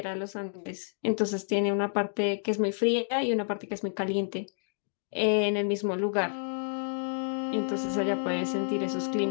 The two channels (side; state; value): right; silent; digital silence